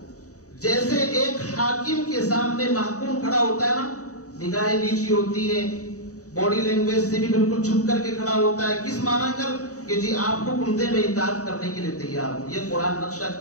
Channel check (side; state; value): right; late; 0.66 ms